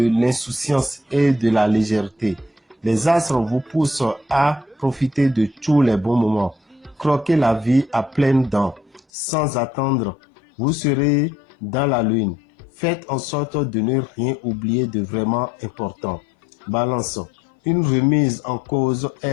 l'insouciance et de la légèreté. Les astres vous poussent à profiter de tous les bons moments. Croquez la vie à pleines dents. Sans attendre, vous serez dans la lune. Faites en sorte de ne rien oublier de vraiment important. Balance, une remise en cause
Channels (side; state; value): right; drops out; at 9.0 s